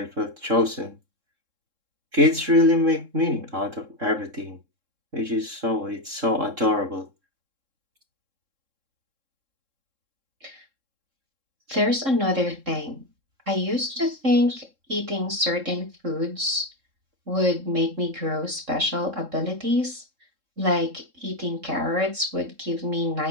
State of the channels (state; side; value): late; left; 3.7 ms